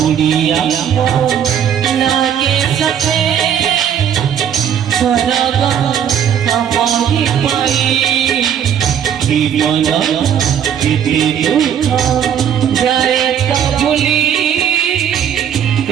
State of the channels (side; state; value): left; quieter; 8.9 dB